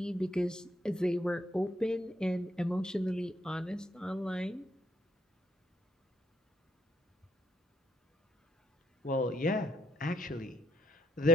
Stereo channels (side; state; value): both; normal; correlation 0.73